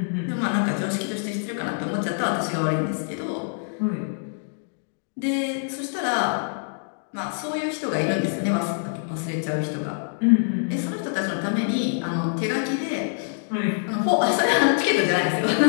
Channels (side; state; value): right; silent; digital silence